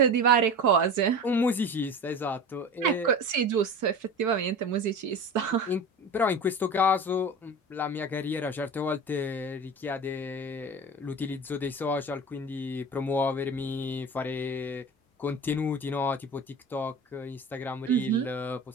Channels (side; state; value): both; normal; correlation 0.32